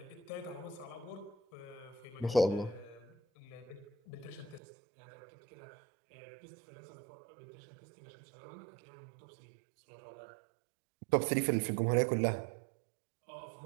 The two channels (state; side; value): drops out; left; at 4.6 s